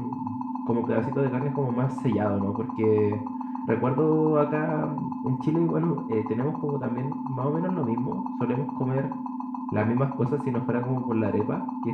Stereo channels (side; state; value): both; identical; correlation 1.00